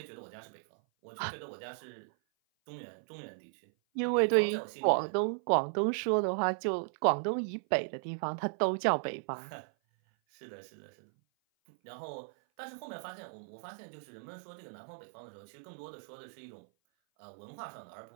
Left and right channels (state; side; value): silent; left; 54 dB below the other